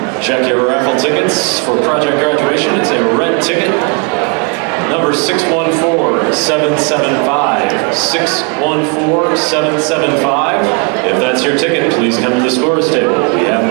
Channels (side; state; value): left; quieter; 35.8 dB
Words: Check your raffle tickets for project graduation. It's a red ticket. Number 614-775. 614-775. If that's your ticket, please come to the scores table. We have